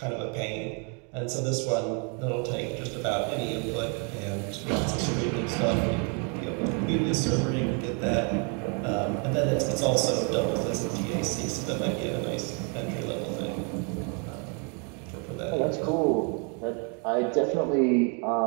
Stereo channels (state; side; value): quieter; left; 37.1 dB